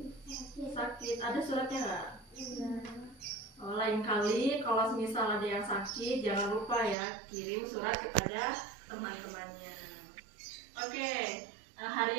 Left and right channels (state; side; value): drops out; left; at 7.0 s